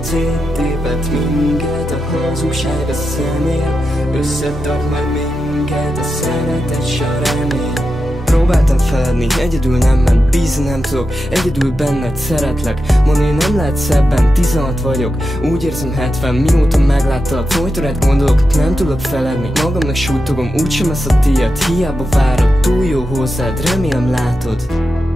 minket a hazugság a szemér, összetart majd minket a szeretet s a remény. Próbáltam feledni, egyedül nem ment, bízni nem tudok, egyedül benned szeretlek. Mondani nem lehet szebben, 16 vagyok, úgy érzem 70, mióta megláttalak. Folyton rád gondolok, nem tudok feledni, magamnak súlytogom, úgysem lesz a tiéd. Hiába várod, túl jó hozzád, remélem látod.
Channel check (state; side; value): normal; both; correlation 0.89